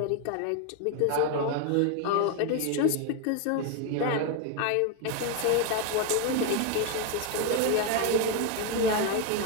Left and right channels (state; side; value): different; both; correlation 0.01